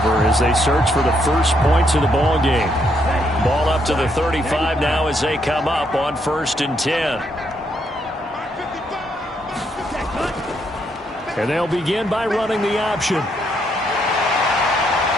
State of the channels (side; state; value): both; normal; correlation 0.75